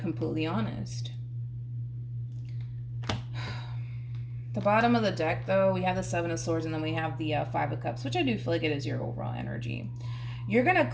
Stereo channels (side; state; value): both; identical; correlation 1.00